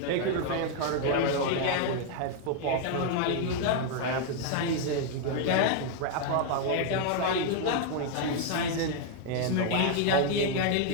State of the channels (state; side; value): different; both; correlation 0.00